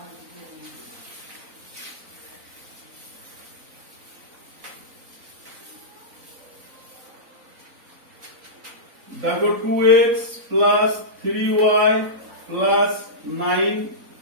দেখো 2x plus 3y plus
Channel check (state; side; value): late; left; 4.0 ms